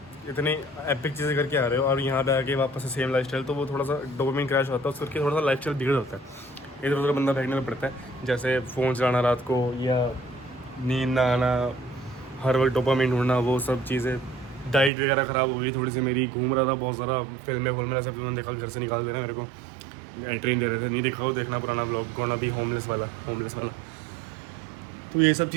इतनी एपिक चीज़ें करके आ रहे हो और यहाँ पे आके वापस से सेम लाइफस्टाइल, तो वो थोड़ा सा डोपामिन क्रैश होता है, उसके करके थोड़ा सा लाइफस्टाइल बिगड़ होता है, इधर उधर बंदा फेंकने में पड़ता है। जैसे फ़ोन चलाना रात को या नींद ना आना, हर वक्त डोपामिन ढूंढना, वो सब चीज़ें। डाइट वगैरह ख़राब हो गई थोड़ी सी मेरी, घूम रहा था बहुत ज़्यादा, फिल्में सब तुमने देखा, घर से निकाल देना मेरे को, एंट्री दे रहे थे, नहीं देखा हो देखना पुराना ब्लॉग, गोना भी होमलेस वाला। तो ये सब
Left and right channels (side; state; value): left; drops out; at 14.9 s